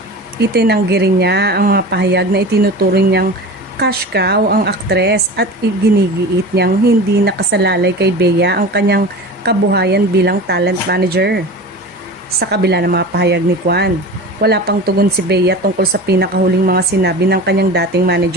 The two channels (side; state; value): both; normal; correlation 0.33